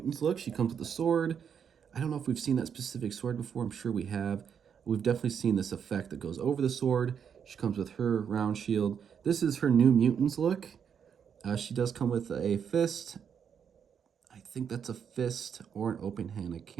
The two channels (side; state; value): left; quieter; 7.6 dB